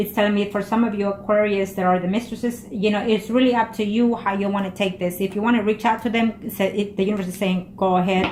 telling me for some of you Aquarius that are the Mistresses, you know, it's really up to you how you want to take this. If you want to reach out to them, the universe is saying, go ahead,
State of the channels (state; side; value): identical; both; correlation 1.00